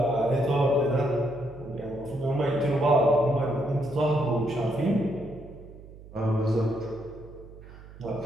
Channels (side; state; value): right; noise; hum, 18 dB below the sound